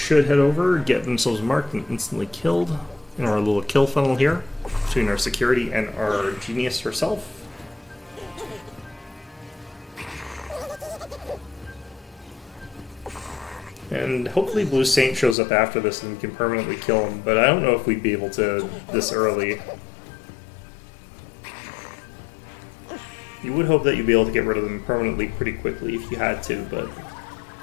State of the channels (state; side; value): drops out; right; at 15.4 s